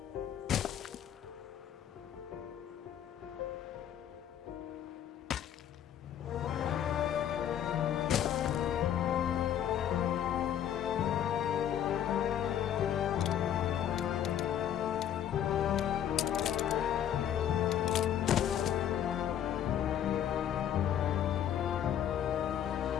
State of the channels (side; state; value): right; quieter; 10.1 dB